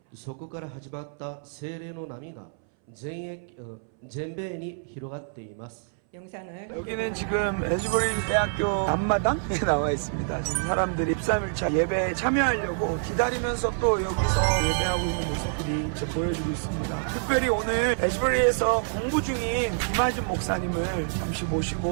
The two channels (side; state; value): left; silent; 60 dB below the other